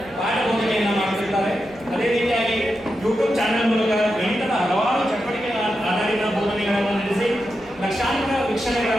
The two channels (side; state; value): right; noise; hum, 24 dB below the sound